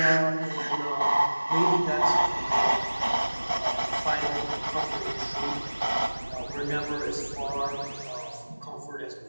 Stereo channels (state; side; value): inverted; both; correlation -1.00